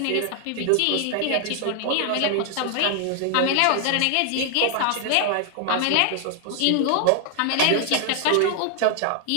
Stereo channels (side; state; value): both; different; correlation 0.00